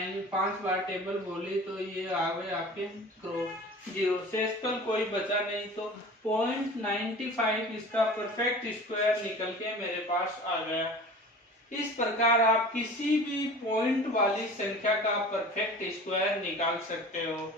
5 बार टेबल बोली तो ये आ गए आपके 0 से कोई बचा नहीं, तो 0.95 इसका परफेक्ट स्क्वायर निकल के मेरे पास आ गया। इस प्रकार आप किसी भी पॉइंट वाली संख्या का परफेक्ट स्क्वायर निकाल सकते हो।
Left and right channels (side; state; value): both; normal; correlation 0.40